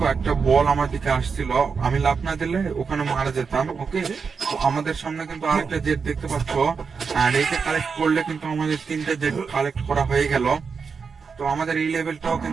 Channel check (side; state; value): left; quieter; 5.5 dB